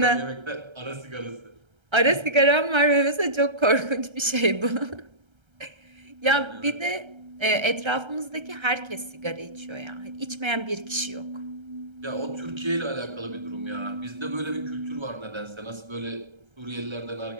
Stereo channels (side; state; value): left; late; 1.3 ms